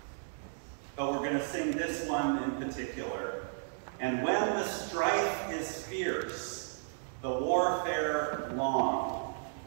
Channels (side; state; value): left; silent; digital silence